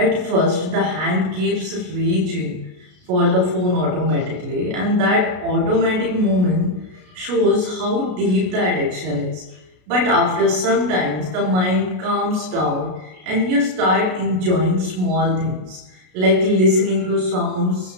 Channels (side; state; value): left; late; 33 ms